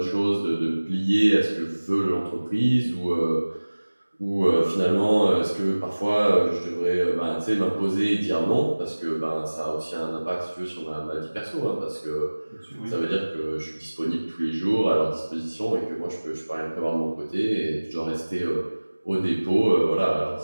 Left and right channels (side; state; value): both; inverted; correlation -1.00